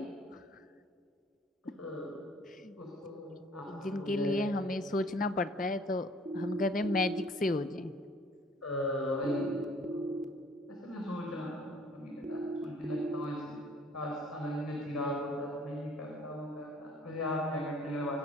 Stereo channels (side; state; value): both; normal; correlation 0.56